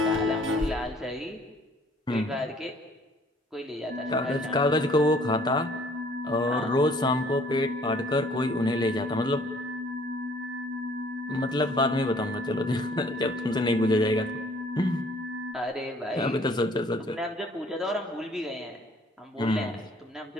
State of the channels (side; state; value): both; normal; correlation 0.58